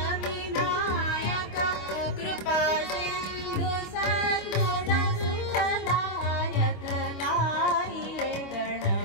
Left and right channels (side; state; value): right; late; 25 ms